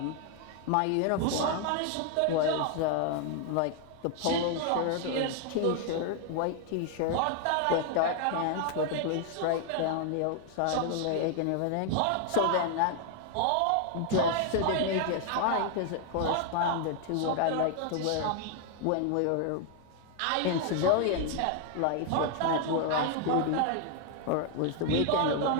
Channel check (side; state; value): both; different; correlation 0.00